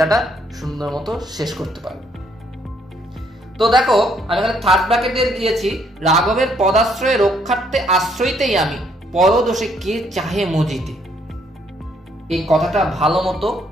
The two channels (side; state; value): both; normal; correlation 0.69